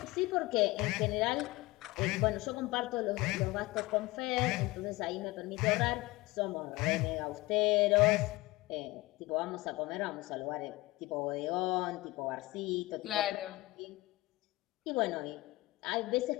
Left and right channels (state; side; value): quieter; right; 20.7 dB